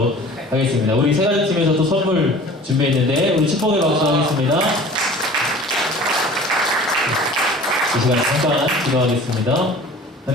하겠습니다. 우리 세가지 팀에서 또 선물 준비했는데 우리 축복의 박수 하겠습니다. 이 시간 잠깐 기도하겠습니다.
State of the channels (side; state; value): both; normal; correlation 0.44